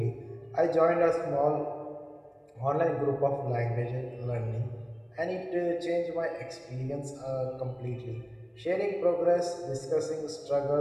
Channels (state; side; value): identical; both; correlation 1.00